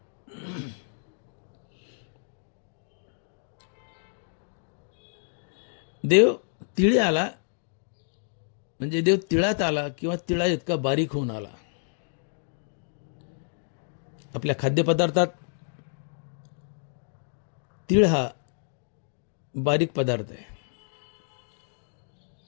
देव तिळी आला म्हणजे देव तिळात आला किंवा तिळा इतका बारीक होऊन आला. आपल्या खाद्यपदार्थात तीळ हा बारीक पदार्थ आहे.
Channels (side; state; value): right; silent; digital silence